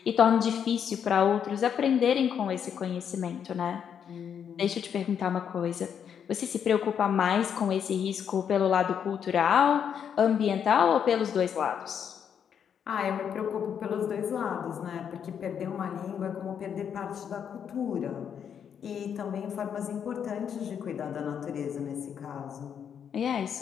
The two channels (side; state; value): right; quieter; 8.0 dB